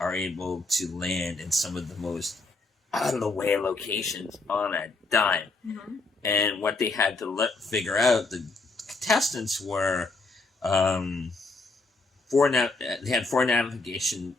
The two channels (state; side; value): quieter; right; 3.4 dB